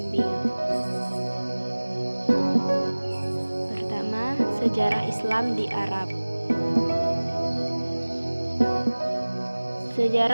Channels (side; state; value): both; inverted; correlation -1.00